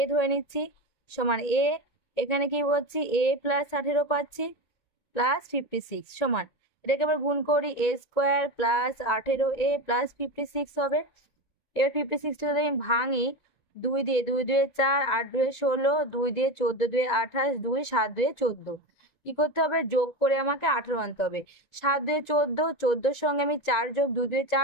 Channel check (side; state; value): right; late; 2.2 ms